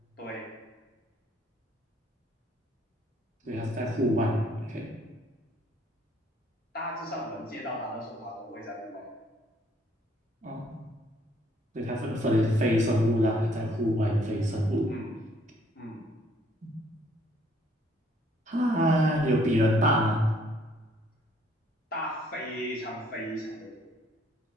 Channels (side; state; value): both; normal; correlation 0.64